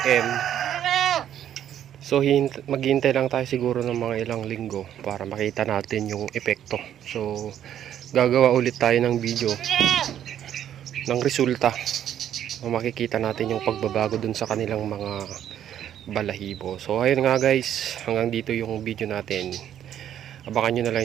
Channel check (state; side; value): quieter; left; 10.4 dB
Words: So maghihintay lang tayo siguro ng mga ilang linggo para makita natin yung epekto. So gagawa ulit tayo ng video ng resulta. So, makikita natin yung pagbabago dun sa kanilang mga balahibo. So ayun nga guys, hanggang dito yung video natin. Abangan nyo na lang